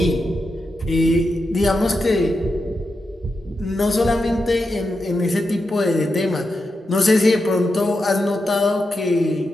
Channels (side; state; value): both; normal; correlation 0.87